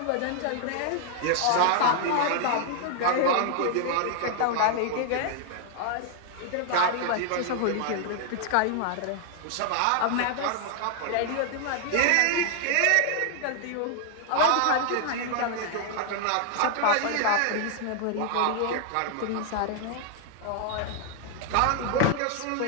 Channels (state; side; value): different; both; correlation 0.00